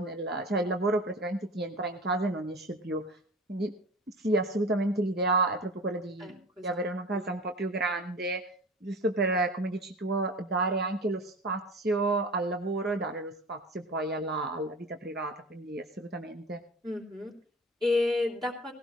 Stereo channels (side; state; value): both; normal; correlation 0.36